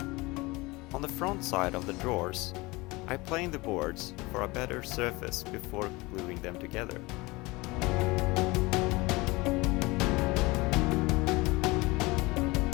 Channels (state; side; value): quieter; right; 23.1 dB